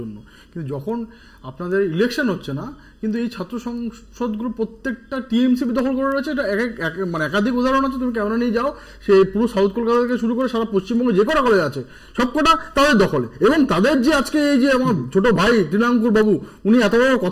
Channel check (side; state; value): both; identical; correlation 1.00